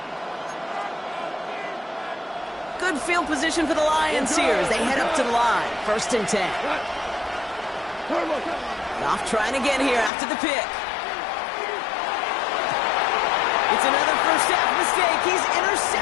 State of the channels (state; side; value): drops out; right; at 10.1 s